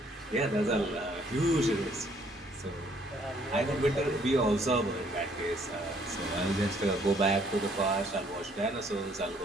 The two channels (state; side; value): normal; both; correlation 0.64